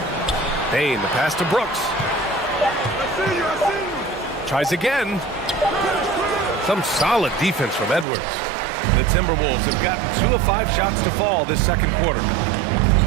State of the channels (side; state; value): left; drops out; at 8.1 s